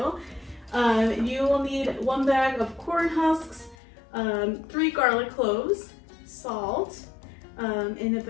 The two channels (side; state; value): right; drops out; at 3.8 s